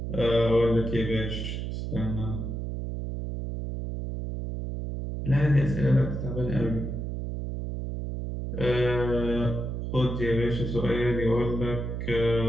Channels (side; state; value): right; noise; hum, 4 dB below the sound